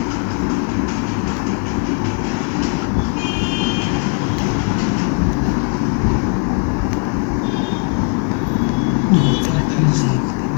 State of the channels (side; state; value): right; quieter; 34.8 dB